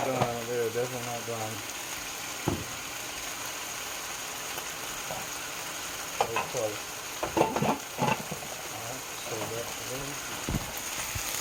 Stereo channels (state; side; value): identical; both; correlation 1.00